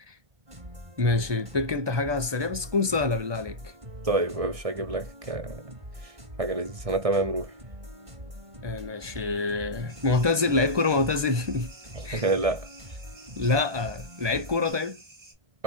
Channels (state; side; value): late; left; 1.2 ms